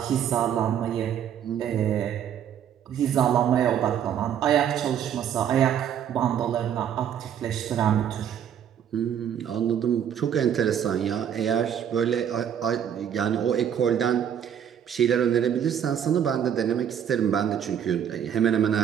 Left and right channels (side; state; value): left; quieter; 9.1 dB